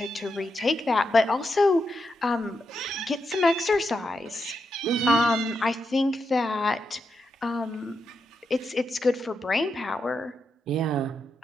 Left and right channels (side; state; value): both; normal; correlation 0.84